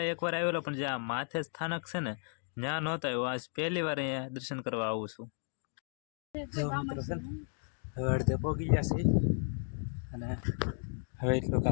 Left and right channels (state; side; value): silent; right; 55 dB below the other